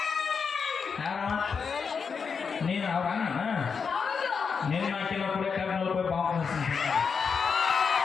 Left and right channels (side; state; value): right; quieter; 5.8 dB